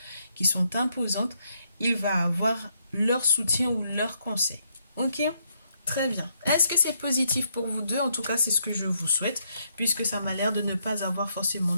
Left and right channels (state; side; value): inverted; both; correlation -0.75